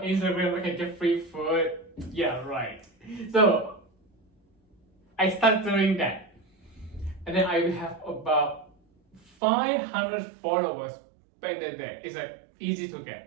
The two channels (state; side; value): drops out; left; at 9.2 s